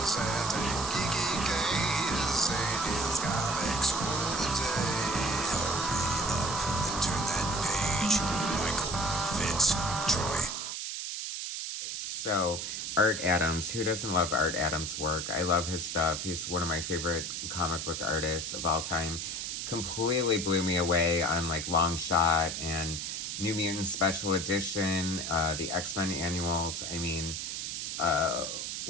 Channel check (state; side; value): noise; right; hiss, 4 dB below the sound